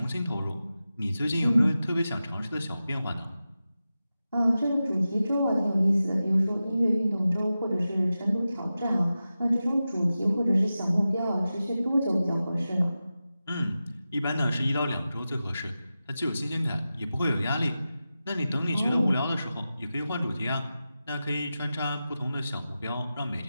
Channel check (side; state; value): both; inverted; correlation -0.93